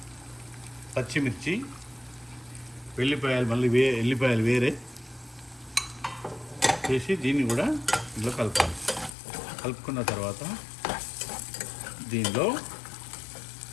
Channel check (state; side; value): drops out; right; at 9.2 s